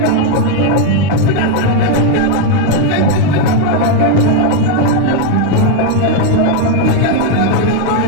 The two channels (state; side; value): different; both; correlation 0.01